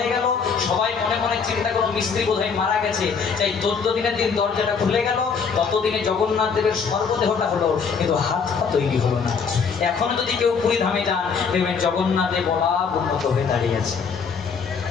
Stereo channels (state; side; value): quieter; right; 5.8 dB